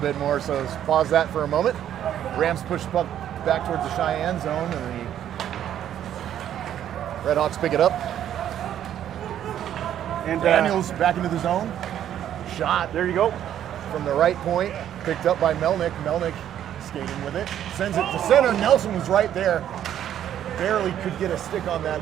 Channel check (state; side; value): quieter; left; 10.6 dB